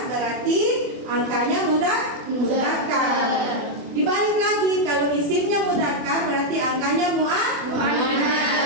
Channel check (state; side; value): late; left; 24 ms